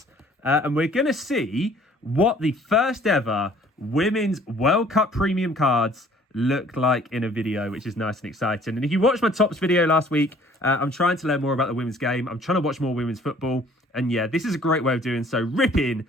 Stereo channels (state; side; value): normal; both; correlation 0.55